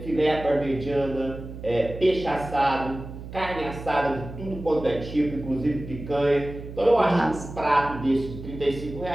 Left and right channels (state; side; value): noise; right; hum, 12 dB below the sound